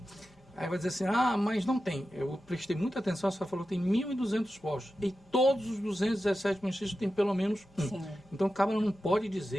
Aí vai dizer assim, mas não tem. Eu prestei muita atenção, você falou que tem 1.200 postos. E todos os 217 municípios têm pelo menos um. Sim. Então, o cabra não pode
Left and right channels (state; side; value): normal; both; correlation 0.92